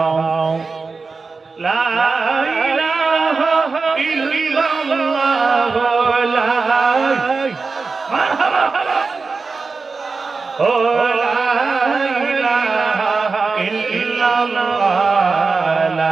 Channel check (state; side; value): quieter; left; 4.3 dB